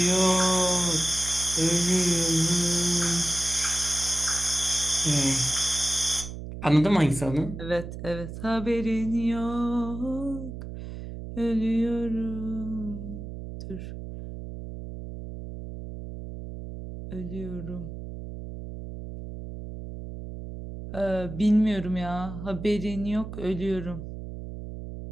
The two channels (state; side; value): noise; right; hum, 9 dB below the sound